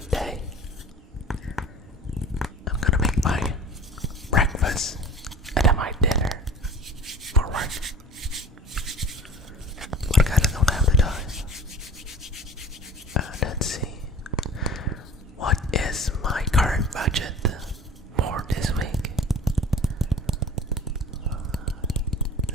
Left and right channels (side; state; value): both; normal; correlation 0.42